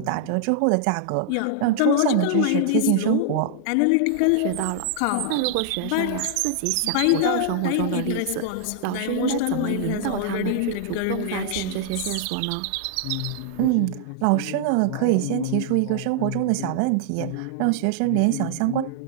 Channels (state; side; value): different; both; correlation -0.01